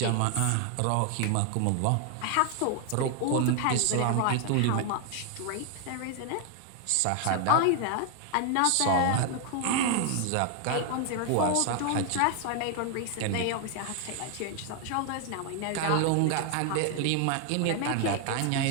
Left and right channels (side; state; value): both; different; correlation 0.00